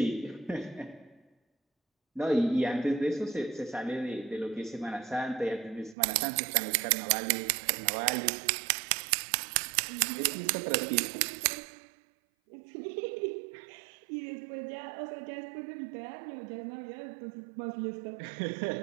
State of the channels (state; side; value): drops out; left; at 6.0 s